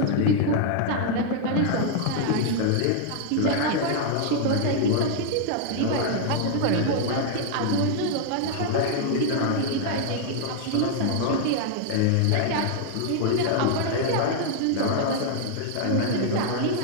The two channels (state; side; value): different; both; correlation 0.00